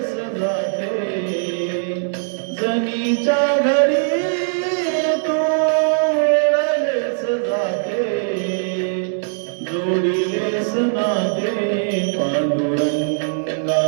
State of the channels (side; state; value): left; silent; digital silence